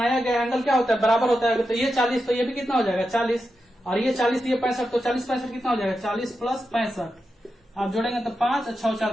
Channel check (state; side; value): normal; both; correlation 0.88